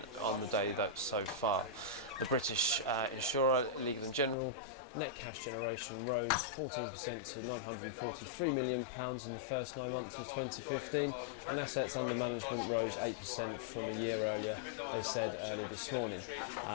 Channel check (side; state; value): right; drops out; at 4.4 s